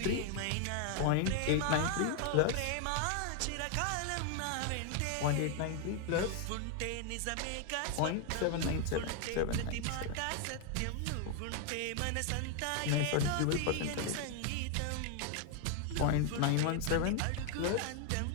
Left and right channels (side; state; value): both; different; correlation 0.00